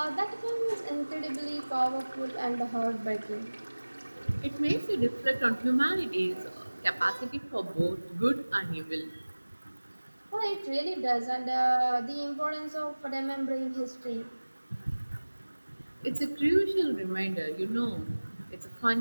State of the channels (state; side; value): inverted; both; correlation -1.00